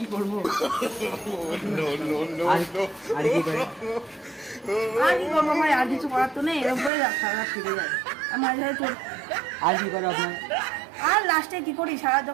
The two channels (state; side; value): drops out; left; at 6.9 s